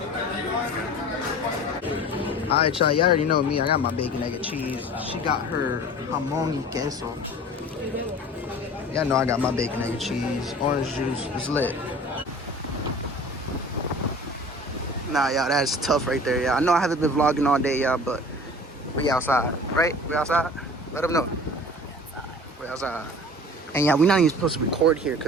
Alright, y'all. You already know me. I got my bacon, egg, and cheese. She got her jamón y queso. Y'all know I got my bacon, egg, and cheese. Orange juice. It's lit. Nah, y'all, that's tough right there, y'all. I know I haven't been vlogging all day, y'all, but we outside, right? We outside? Let them know. We outside. And yeah, we not even supposed to record here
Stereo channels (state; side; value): normal; both; correlation 0.42